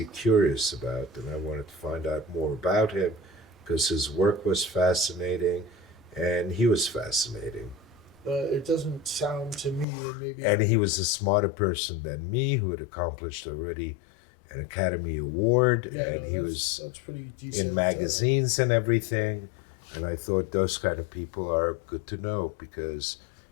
curious about, and I wanted to find out more about him because his work was fascinating, and he was fascinating. It doesn't sound to me, and maybe. And he was a smarter person than me, who had accomplished already an Academy Award, yeah, and no, he was that's pretty decent. in magazines and everything. And I thought those kind of people are good to know, because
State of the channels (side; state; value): right; drops out; at 9.9 s